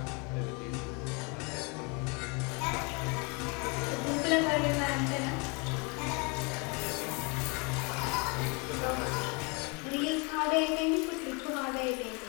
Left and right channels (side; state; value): right; quieter; 31.3 dB